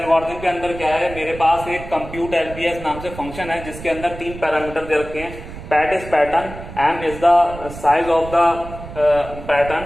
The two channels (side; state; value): right; noise; rumble, 13 dB below the sound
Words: के अंदर क्या है, मेरे पास एक compute LPS नाम से फंक्शन है जिसके अंदर 3 पैरामीटर दे रखे हैं. PAT is pattern, m is the size of the pattern